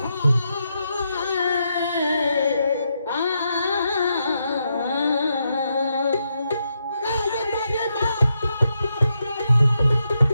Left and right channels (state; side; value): inverted; both; correlation -0.82